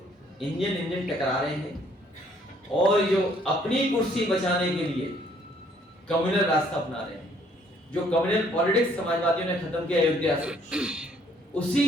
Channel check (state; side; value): normal; both; correlation 0.63